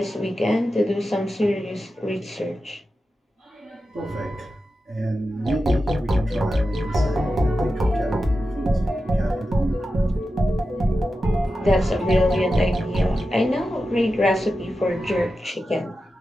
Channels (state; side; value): normal; both; correlation 0.91